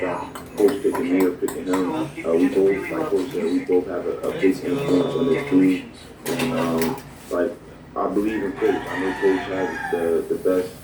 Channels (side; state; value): both; identical; correlation 1.00